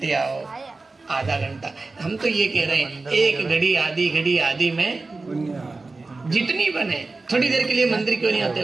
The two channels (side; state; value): left; quieter; 3.6 dB